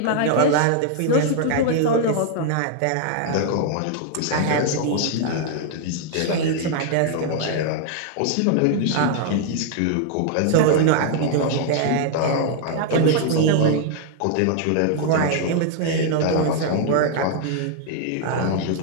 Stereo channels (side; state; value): both; different; correlation 0.00